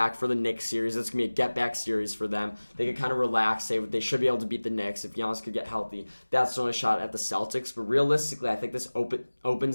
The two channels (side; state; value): both; inverted; correlation -1.00